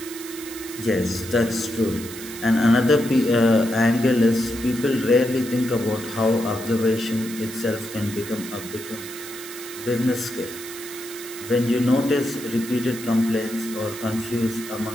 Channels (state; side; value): noise; right; hiss, 13 dB below the sound